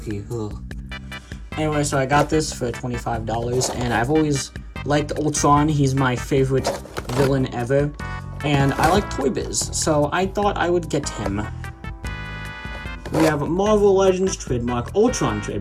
Ugh. Anyway, so I got this for $25, and I've always liked Ultron. He's my favorite villain ever, and I like Toy Biz, so I thought I would get him. We have Marvel Legends trademark, Ultron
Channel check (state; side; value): identical; both; correlation 1.00